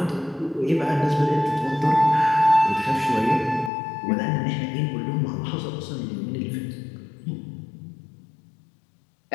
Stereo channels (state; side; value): drops out; right; at 3.7 s